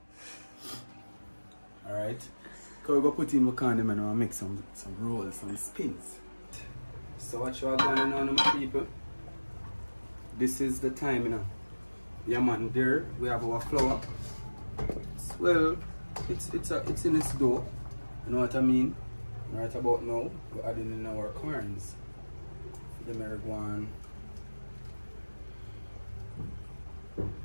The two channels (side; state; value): both; inverted; correlation -1.00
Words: Alright. So we're gonna put in my condom and I'll make some rolls, some spins. So what you are going on, my people? This is the time, you know. Yeah man, there we have our flour. Well, it's in its dough. You know what I mean? Right about now, we're adding in our corns. The marijuana.